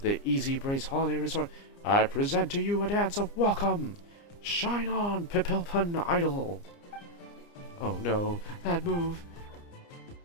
the Easybreeze Holiday Resort, I present to you a dance of welcome. Shine on, Papilpon Idol! Oh no, that move.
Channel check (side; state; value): right; late; 29 ms